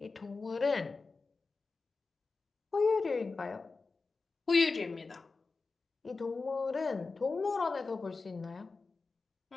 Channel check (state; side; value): quieter; right; 4.1 dB